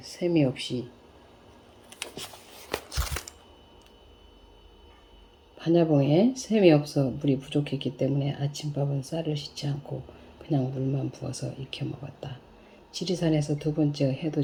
셈이 없이 반야봉에 셈이 없어 물이 부족했기 때문에 아침밥은 쌀을 씻지 않고 그냥 물만 부어서 익혀 먹었다. 지리산에서 두 번째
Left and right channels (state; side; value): identical; both; correlation 1.00